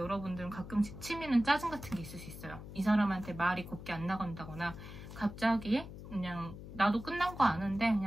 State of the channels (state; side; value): noise; left; hum, 12 dB below the sound